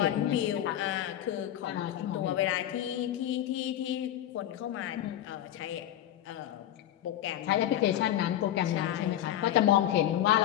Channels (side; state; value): right; quieter; 12.0 dB